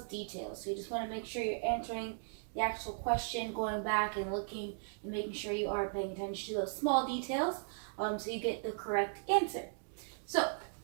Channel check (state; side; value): silent; left; digital silence